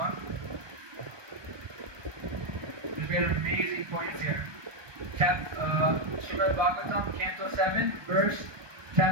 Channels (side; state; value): left; late; 1.2 ms